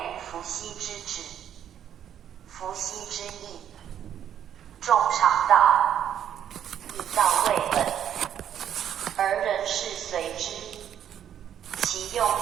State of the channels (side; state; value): left; quieter; 9.7 dB